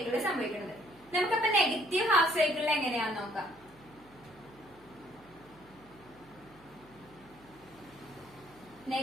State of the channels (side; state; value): right; noise; hum, 26 dB below the sound